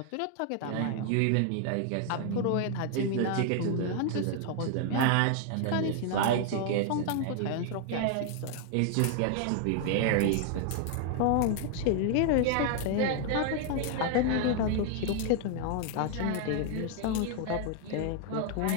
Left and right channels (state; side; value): different; both; correlation 0.00